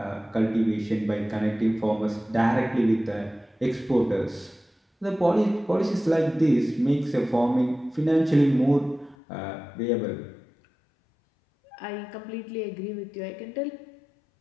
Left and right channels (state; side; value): drops out; right; at 9.2 s